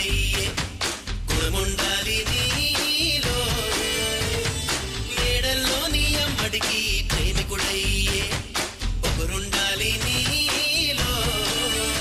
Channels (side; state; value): both; identical; correlation 1.00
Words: గుణముండాలి నీలో. మేడల్లోని అమ్మడికి ప్రేమికుడయ్యే ఒకరుండాలి నీలో.